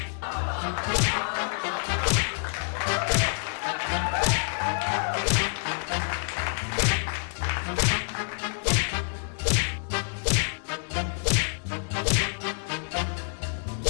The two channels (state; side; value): silent; right; 60 dB below the other